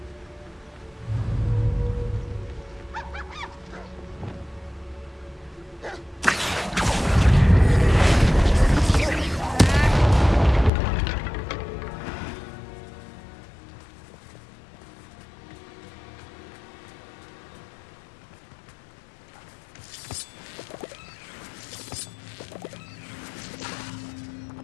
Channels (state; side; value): drops out; right; at 10.7 s